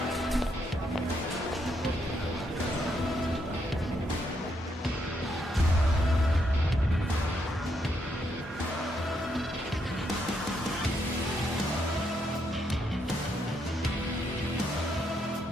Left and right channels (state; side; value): normal; both; correlation 0.77